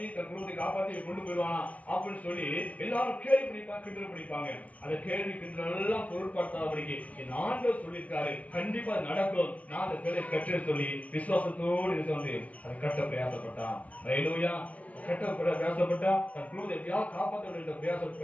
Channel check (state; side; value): late; right; 0.068 ms